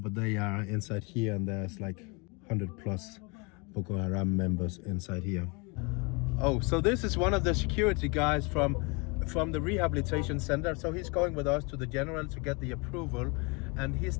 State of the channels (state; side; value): quieter; right; 30.1 dB